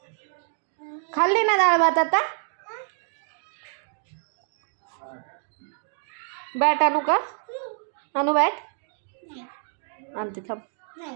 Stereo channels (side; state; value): left; silent; digital silence